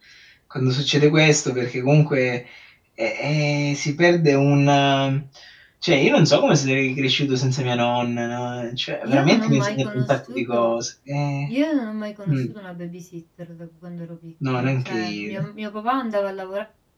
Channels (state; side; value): identical; both; correlation 1.00